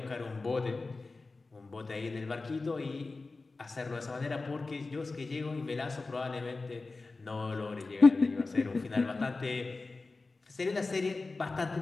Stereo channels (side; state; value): right; quieter; 3.7 dB